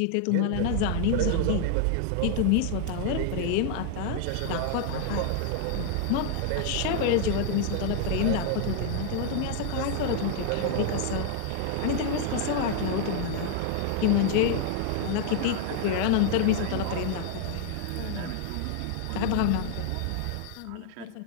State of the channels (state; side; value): different; both; correlation 0.00